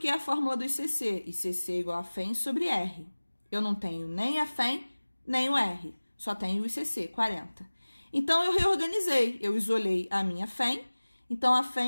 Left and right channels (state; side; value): inverted; both; correlation -1.00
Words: a fórmula do ICC. ICC igual a FEM sobre R. Eu não tenho nem a FEM, nem o R. Só tenho o ICC, 40. Então, eu reorganizei. Eu isolei a minha FEM. Então, a